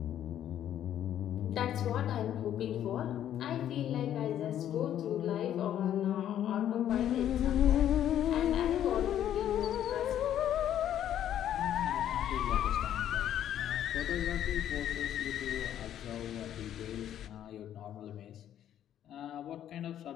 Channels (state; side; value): quieter; right; 10.8 dB